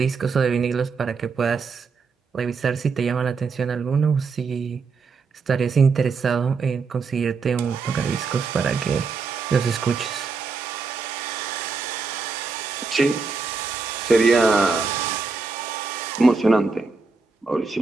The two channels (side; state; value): left; quieter; 4.7 dB